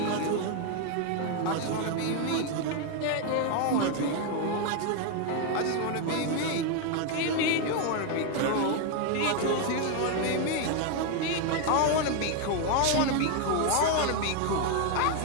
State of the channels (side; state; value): both; different; correlation 0.01